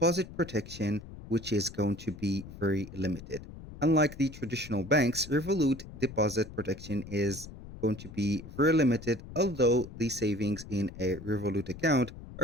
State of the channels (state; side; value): noise; left; rumble, 14 dB below the sound